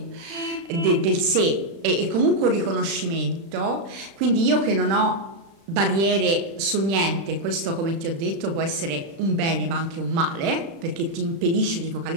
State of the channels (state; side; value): late; left; 36 ms